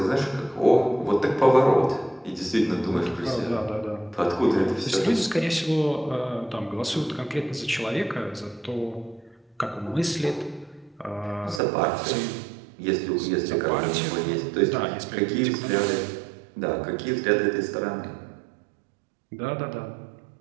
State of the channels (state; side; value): drops out; left; at 11.6 s